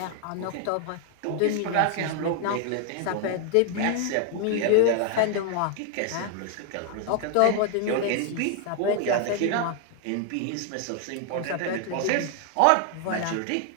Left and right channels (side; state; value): both; different; correlation 0.00